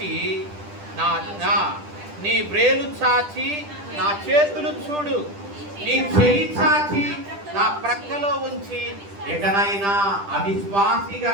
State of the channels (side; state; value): left; late; 10 ms